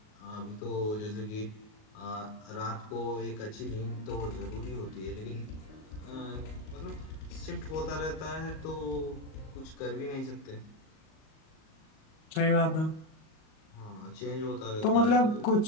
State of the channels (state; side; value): late; right; 38 ms